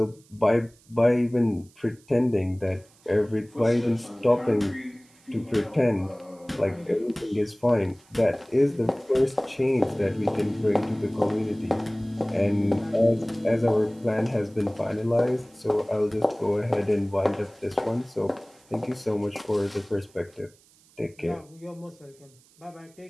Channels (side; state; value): right; noise; hiss, 29 dB below the sound